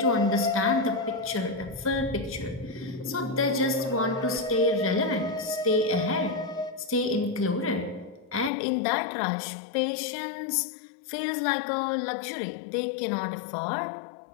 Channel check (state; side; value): drops out; right; at 8.5 s